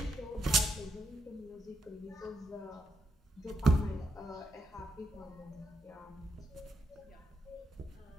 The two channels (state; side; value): normal; both; correlation 0.78